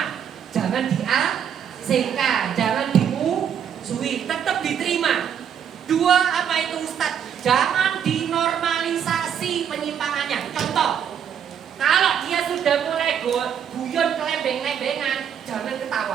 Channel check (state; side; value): quieter; left; 8.5 dB